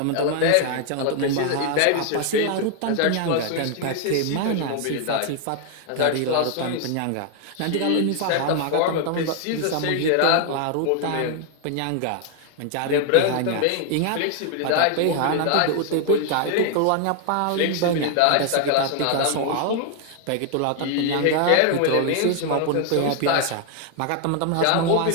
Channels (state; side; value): different; both; correlation 0.00